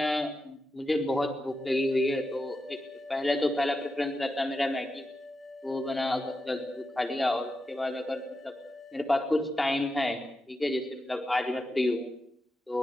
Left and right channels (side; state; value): both; normal; correlation 0.89